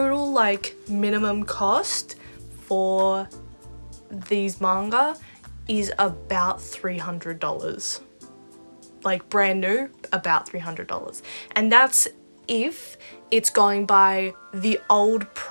like minimum cost for these manga is about $300. Like brand new, about $300. And that's if it's going by the old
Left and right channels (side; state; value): both; inverted; correlation -1.00